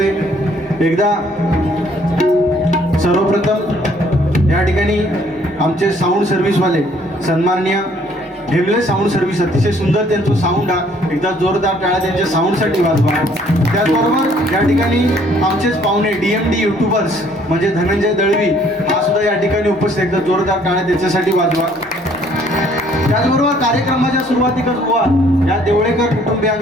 एकदा सर्वप्रथम या ठिकाणी आमचे साऊंड सर्व्हिसवाले सन्माननीय ढेमले साऊंड सर्व्हिस अतिशय सुंदर त्यांचं साऊंड आहे. एकदा जोरदार टाळ्या त्यांच्या साऊंडसाठी वाजवा. त्याचबरोबर या ठिकाणी आमचेच पाहुणे DMD युट्यूबर्स म्हणजे धनंजय दळवी हा सुद्धा या ठिकाणी उपस्थित. एकदा जोरदार टाळ्या त्याच्यासाठी वाजवा. त्याचबरोबर कार्यक्रमाच्या सुरुवातीकच बुवा या देवळेकर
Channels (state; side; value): normal; both; correlation 0.62